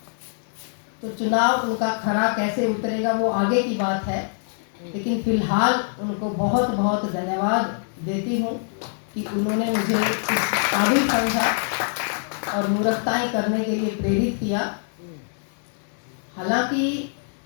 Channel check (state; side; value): silent; right; digital silence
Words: तो चुनाव उनका खरा कैसे उतरेगा वो आगे की बात है, लेकिन फिलहाल उनको बहुत बहुत धन्यवाद देती हूँ कि उन्होंने मुझे इस काबिल समझा और मूर्खताएं करने के लिए प्रेरित किया। हालांकि